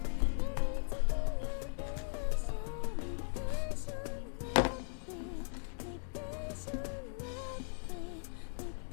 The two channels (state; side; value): silent; right; 52 dB below the other